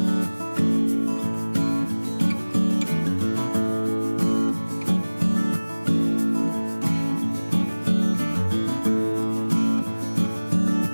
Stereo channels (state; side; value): inverted; both; correlation -1.00